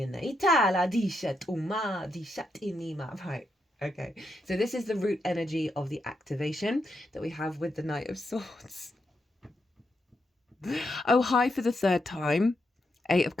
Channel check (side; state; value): both; normal; correlation 0.82